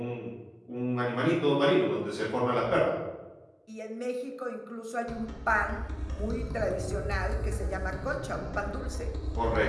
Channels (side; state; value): both; identical; correlation 1.00